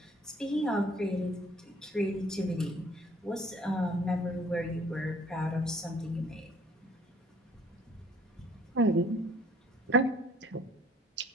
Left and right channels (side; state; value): both; normal; correlation 0.56